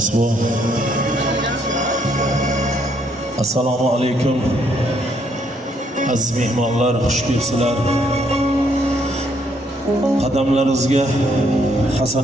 bu. Assalomu alaykum. Aziz mehmonlar, xush kelibsizlar. Qadamlaringizga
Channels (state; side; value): normal; both; correlation 0.70